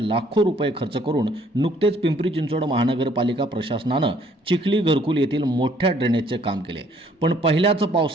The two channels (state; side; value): normal; both; correlation 0.62